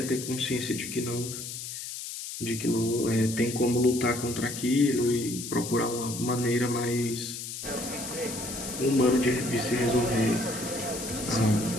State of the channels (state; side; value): noise; left; hiss, 8 dB below the sound